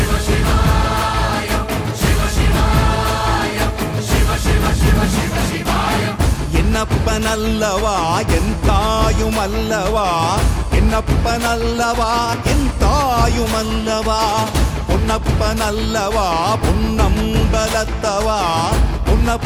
என்னப்பனல்லவா என் தாயுமல்லவா, என்னப்பனல்லவா என் தாயுமல்லவா, பொன்னப்பனல்லவா பொன்னம்பலத்தவா,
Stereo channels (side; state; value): both; identical; correlation 1.00